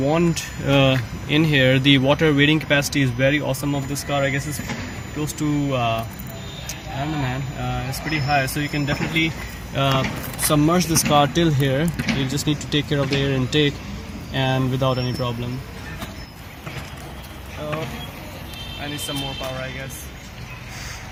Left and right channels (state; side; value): identical; both; correlation 1.00